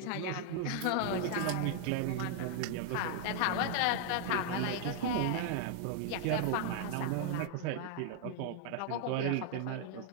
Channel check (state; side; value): different; both; correlation 0.00